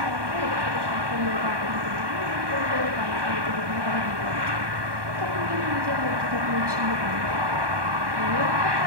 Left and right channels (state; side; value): late; left; 1.2 ms